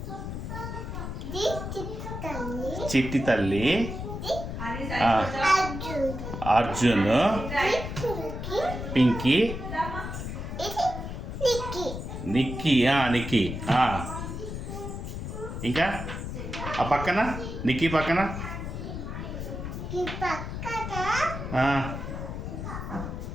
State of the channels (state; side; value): noise; left; rumble, 6 dB below the sound